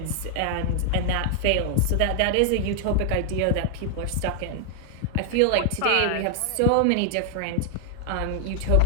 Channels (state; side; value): different; both; correlation 0.00